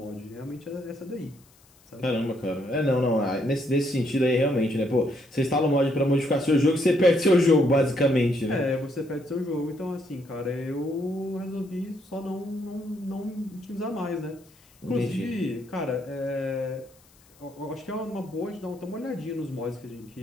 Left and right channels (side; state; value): left; noise; hiss, 29 dB below the sound